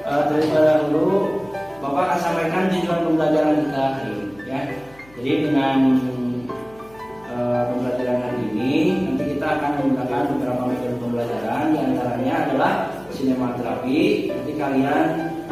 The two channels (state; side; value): noise; left; hum, 26 dB below the sound